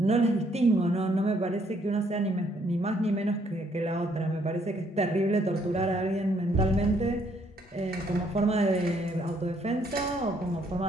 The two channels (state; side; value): normal; both; correlation 0.68